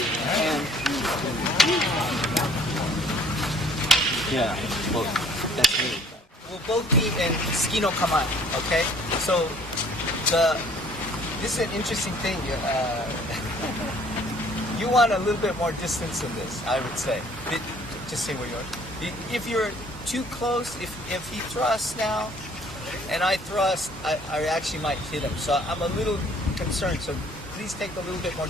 and yeah, well, that's me. We'll both be in ski no kamae, okay? So this is an interesting thing. You want a little bit more distance in this, I would say. Just say where you are. If you're too close, if he thrusts now and I thrust, I actually might hit him. So I'm a little concerned. So please take a little bit more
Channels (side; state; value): both; normal; correlation 0.57